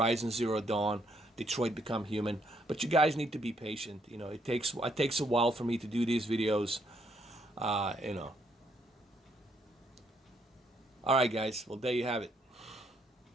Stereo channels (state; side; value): normal; both; correlation 0.72